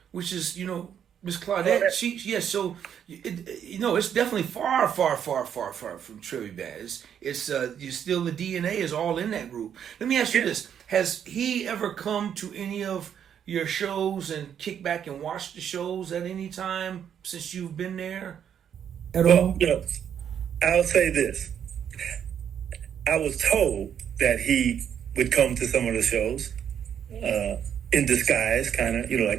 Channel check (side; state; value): left; quieter; 8.7 dB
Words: which is, you know, Miss Claudette. So you know, it's definitely far from Trivia Band. It's you still, the DNA is all in that group. Let me ask you this: has he ever come to any of your shows and kick back and watch the shows at any time since you've been there at all? You know, I'll say this. I was told that he would come to some of the shows in disguise, kind of, you know,